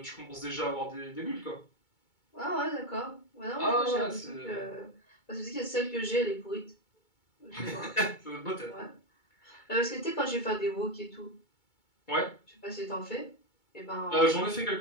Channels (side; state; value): right; late; 2.2 ms